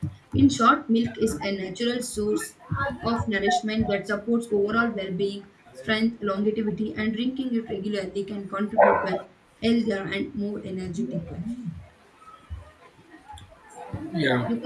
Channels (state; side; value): identical; both; correlation 1.00